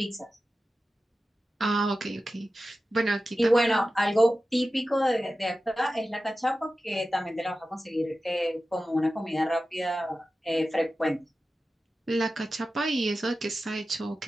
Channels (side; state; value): both; normal; correlation 0.94